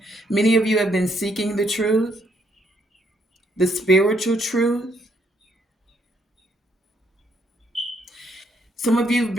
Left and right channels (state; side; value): normal; both; correlation 0.72